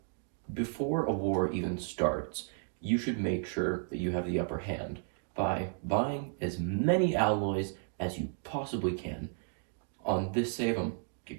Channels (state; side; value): silent; left; 56 dB below the other